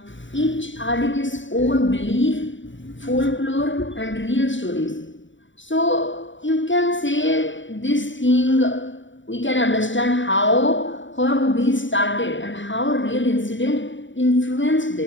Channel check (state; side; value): late; right; 0.55 ms